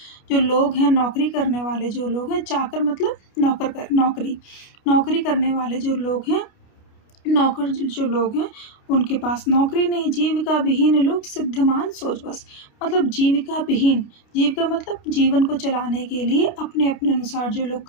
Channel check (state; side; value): late; right; 29 ms